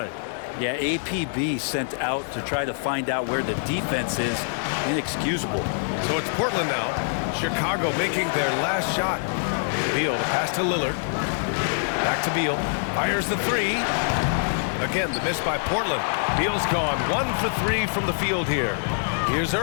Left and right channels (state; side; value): silent; right; digital silence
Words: Yeah, APB sent out to try to find out where the defense is. Inexcusable. So it's Portland now. Chicago making their last shot. Beal to pass to Lillard. Back to Beal. Fires the 3. Again, the miss by Portland. Beal's gone 1 for 3 from the field here. Here's